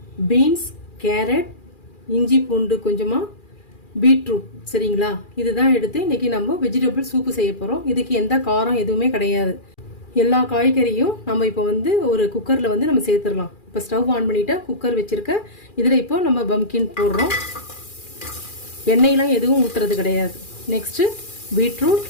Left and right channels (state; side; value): late; right; 2.4 ms